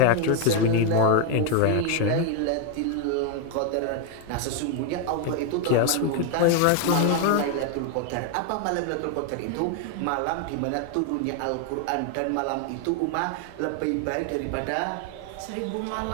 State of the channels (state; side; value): different; both; correlation 0.01